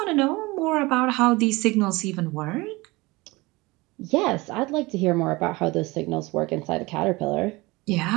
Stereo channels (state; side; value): quieter; left; 22.7 dB